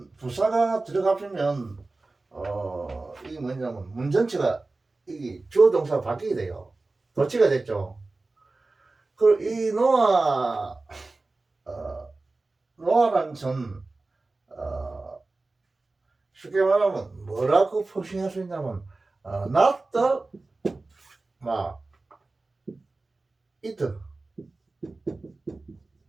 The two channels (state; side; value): quieter; left; 3.3 dB